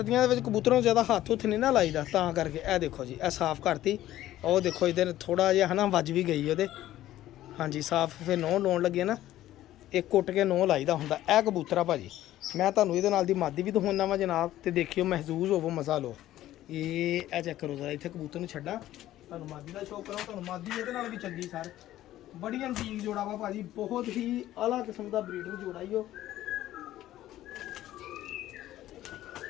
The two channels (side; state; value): right; quieter; 14.0 dB